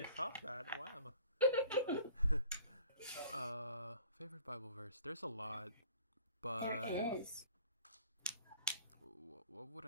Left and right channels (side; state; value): both; inverted; correlation -0.50